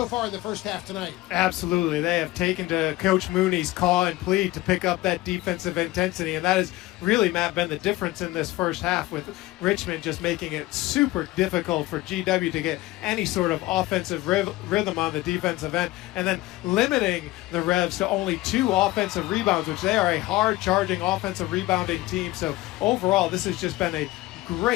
far in the first half tonight. Absolutely. They have taken to Coach Mooney's call and plead to pick up that defensive intensity, and that has really, Matt, been the difference in this first half, with Richmond just making it super difficult for GW to get any sort of offensive rhythm on the defensive end, and then limiting the Revs to only 2 offensive rebounds, which they are a hard-charging offensive rebounding team. So overall, this has just been a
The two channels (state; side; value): quieter; right; 18.3 dB